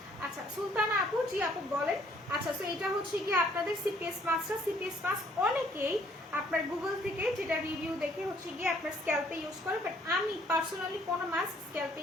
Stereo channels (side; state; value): both; normal; correlation 0.63